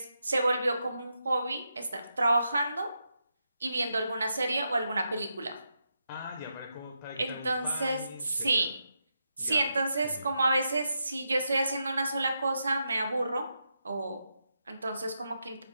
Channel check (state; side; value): inverted; both; correlation -0.84